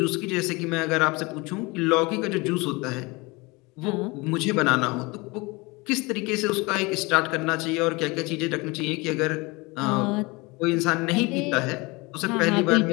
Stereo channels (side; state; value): right; quieter; 25.1 dB